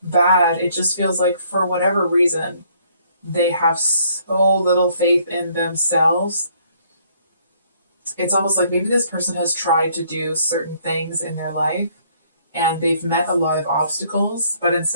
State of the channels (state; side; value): inverted; both; correlation -0.64